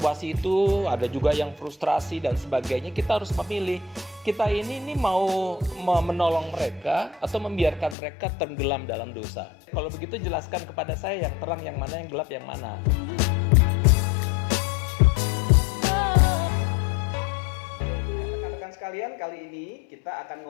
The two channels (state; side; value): drops out; right; at 8.0 s